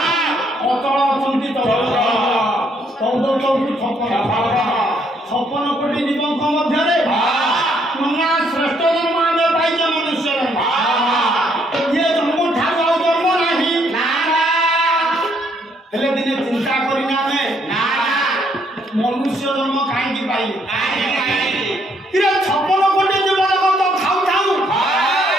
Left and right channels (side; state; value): both; normal; correlation 0.70